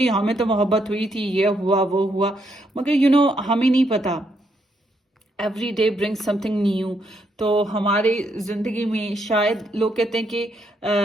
हमें तो मोहब्बत हुई थी, ये हुआ वो हुआ, मगर हमें नहीं पता। Every day bring something new. तो हमारे जिंदगी में शायद लोग कहते हैं कि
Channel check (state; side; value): normal; both; correlation 0.76